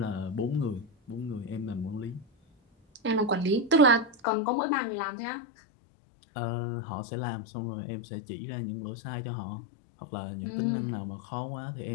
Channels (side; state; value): right; drops out; at 4.2 s